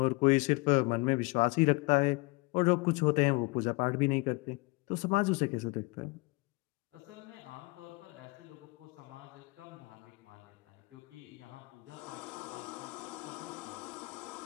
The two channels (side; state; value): right; quieter; 26.4 dB